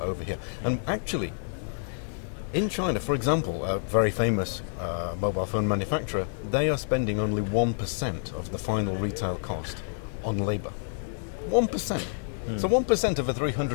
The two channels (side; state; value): right; silent; digital silence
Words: here. And actually, in China, for example, a very famous mobile phone manufacturer, they are spending only 1% of the final retail cost on labor. 1%. So 1% of a